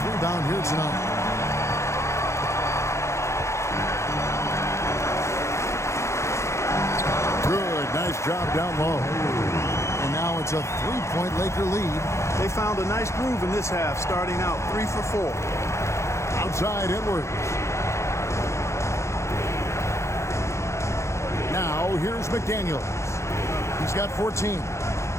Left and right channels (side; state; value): right; late; 0.14 ms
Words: rebound here tonight. Nice job down low. And now it's a 3-point Laker lead. They found a nice groove in this half, starting out 3 for 4. Outside Edwards. Now here's McDaniels. He's got 14.